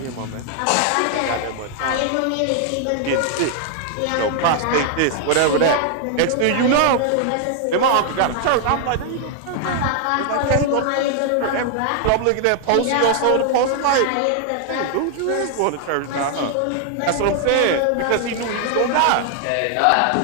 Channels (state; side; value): different; both; correlation 0.00